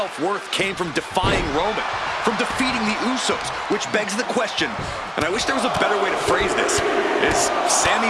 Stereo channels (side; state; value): both; identical; correlation 1.00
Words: came from defying Roman, from defeating the Usos, which begs the question, and I wish there was a better way to phrase this. Is